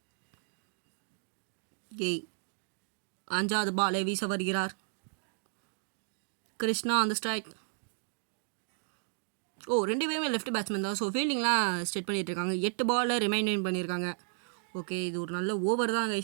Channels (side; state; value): left; silent; 56 dB below the other